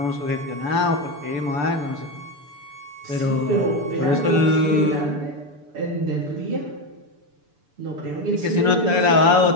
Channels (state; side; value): late; left; 6.9 ms